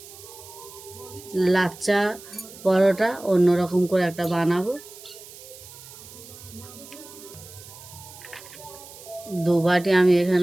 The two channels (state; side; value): noise; right; hiss, 17 dB below the sound